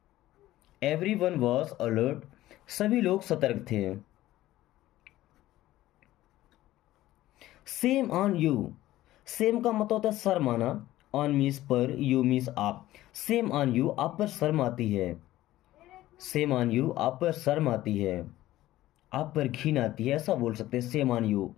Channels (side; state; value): right; quieter; 15.4 dB